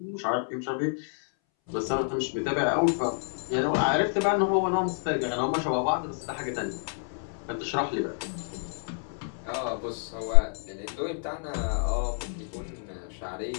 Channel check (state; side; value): silent; right; 59 dB below the other